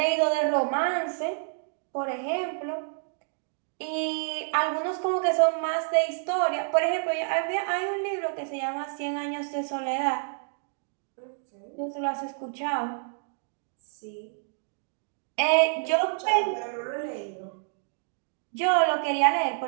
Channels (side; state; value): left; silent; digital silence